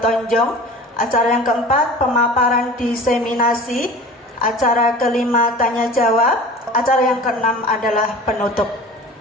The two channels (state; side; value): normal; both; correlation 0.39